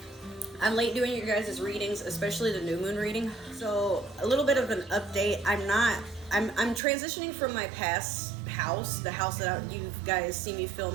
I'm late doing you guys' readings, especially the new moon reading. So a little bit of an update. I'm transitioning from my past house, the house that you guys see me film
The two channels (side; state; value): left; drops out; at 6.8 s